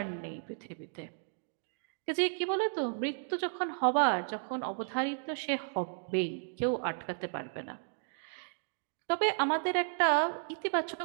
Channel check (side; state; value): left; silent; digital silence